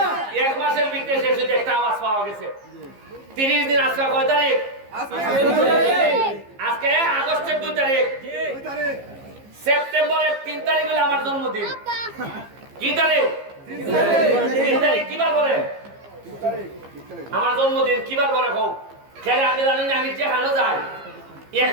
এক মাসের ভিতরে শেষ হইতো একটা আওয়াজ পাওয়া গেছে 30 দিন আজকে কয় তারিখ আজকে আগস্টের 2 তারিখ সেপ্টেম্বরের 3 তারিখ হলো আমার জন্মদিন কি তারিখ 3 তারিখ কি বার করে আমার জন্মদিন কি বার করে কও খেলে আমি জানি না আমি যে হানো যাই এক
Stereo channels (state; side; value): late; left; 15 ms